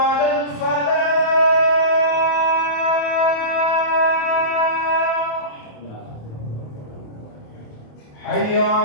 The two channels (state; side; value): late; right; 27 ms